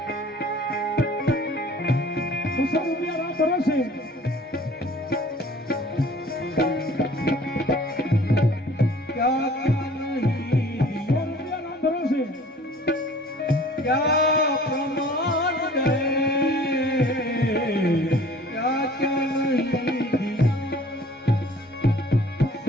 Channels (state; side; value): normal; both; correlation 0.50